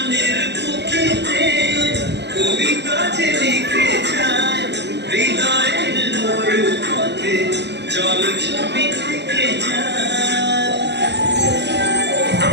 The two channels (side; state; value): left; late; 0.50 ms